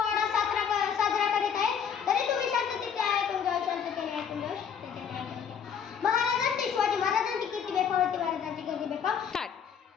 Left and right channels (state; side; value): quieter; right; 7.5 dB